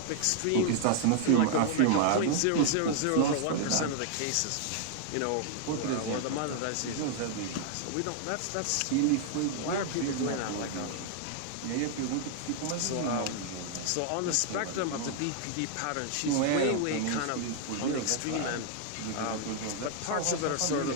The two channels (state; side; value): different; both; correlation 0.00